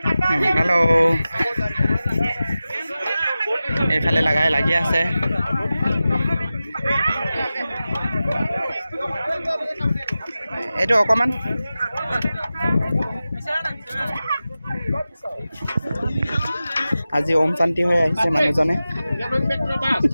হেল্ল' এইফালে লাগি আছে এইটো অকণমান আজি ওম শান্তি হৈ আহিছে মানুহজনে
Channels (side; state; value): both; inverted; correlation -0.94